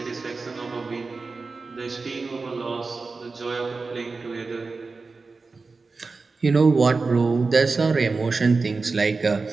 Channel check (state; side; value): quieter; left; 4.1 dB